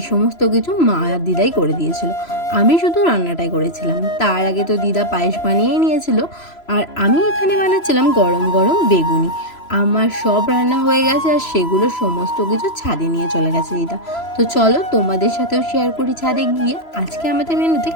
সমস্ত কিছু মা আর দিদাই করে দিয়েছিল। আমি শুধু রান্নাটাই করেছিলাম। তার আগে তো দিদা পায়েস বানিয়েই নিয়েছিল, আর আমি এখানে বানাচ্ছিলাম গরম গরম বেগুনি। আমার সব রান্না হয়ে গেছে, আর সেগুলো সমস্ত কিছু ছাদে নিয়ে চলে গেছে দিদা। তো চলো তোমাদের সাথেও শেয়ার করি ছাদে গিয়ে আজকে আমাদের মেনুতে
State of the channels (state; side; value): late; right; 3.0 ms